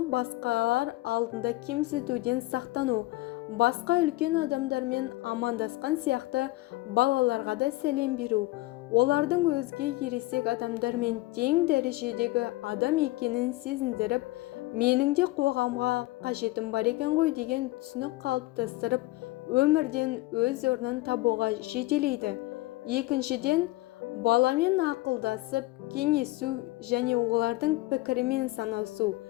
басқалар алдында кемсітуден сақтану. Басқа үлкен адамдармен амандасқан сияқты балаларға да сәлем беру, олардың өзге ересек адамдармен тең дәрежедегі адам екенін сезіндіріп, менің де қоғамға қажетім бар екен ғой деген түсінік қалыптастырып, өмірден өз орнын табуға жетелейді. Екіншіден, баламен ақылдасып, кеңесу және олардың пікірімен санасу.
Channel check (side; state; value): right; quieter; 19.7 dB